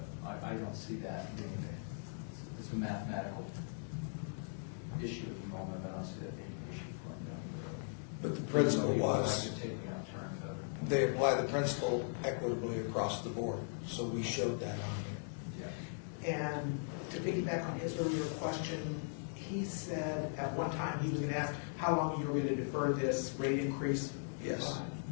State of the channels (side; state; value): right; silent; 52 dB below the other